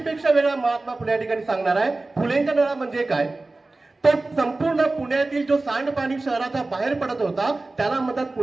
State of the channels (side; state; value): left; quieter; 3.2 dB